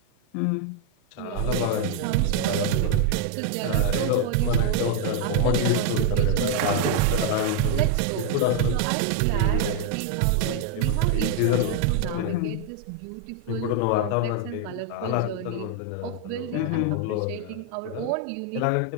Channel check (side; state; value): both; different; correlation 0.00